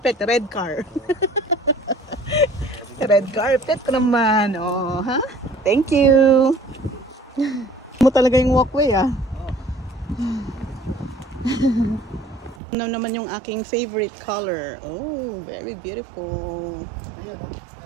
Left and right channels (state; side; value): drops out; left; at 12.6 s